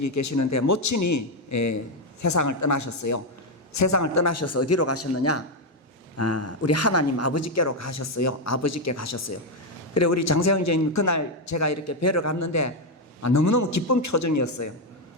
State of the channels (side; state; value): both; normal; correlation 0.05